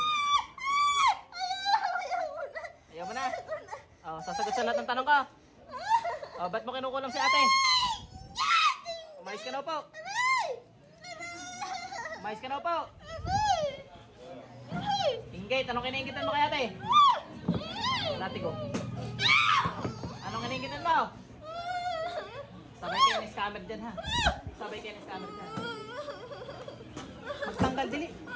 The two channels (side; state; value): both; identical; correlation 1.00